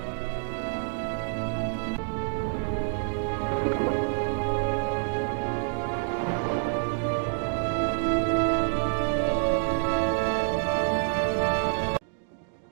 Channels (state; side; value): silent; left; 60 dB below the other